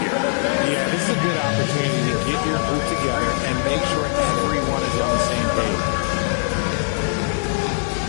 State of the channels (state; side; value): silent; right; digital silence